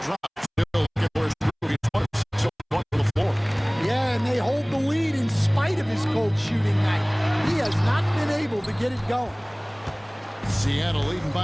drop. Still looking for his he's 26 on the floor. Yeah, and they hold the lead in spite of his cold shooting night. He has not been able to get it going. Seattle leading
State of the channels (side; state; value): both; identical; correlation 1.00